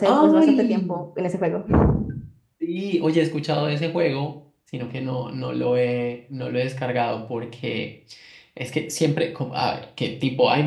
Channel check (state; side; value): identical; both; correlation 1.00